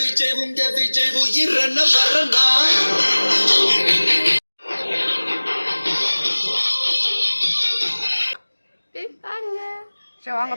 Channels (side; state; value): both; inverted; correlation -1.00